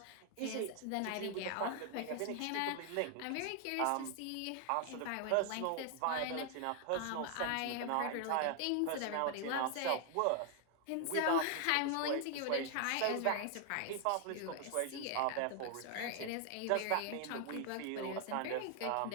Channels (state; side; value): different; both; correlation 0.00